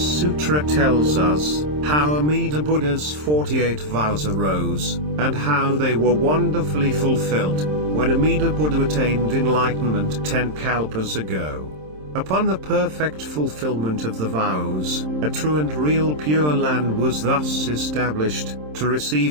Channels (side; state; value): left; late; 27 ms